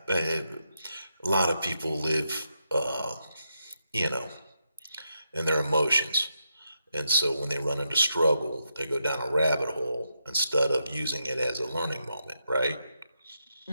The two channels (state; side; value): inverted; both; correlation -0.83